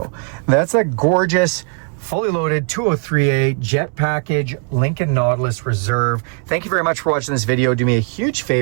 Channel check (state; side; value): quieter; left; 37.1 dB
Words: that's a gorgeous, fully loaded 203A jet package Lincoln Nautilus Reserve. Thank you very much for watching this video. Do me a huge